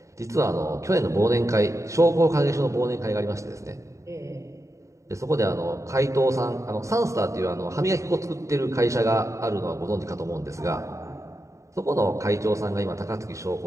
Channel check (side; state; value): left; late; 0.15 ms